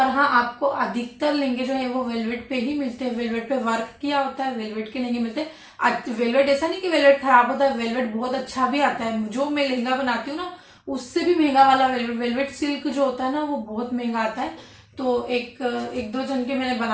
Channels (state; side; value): identical; both; correlation 1.00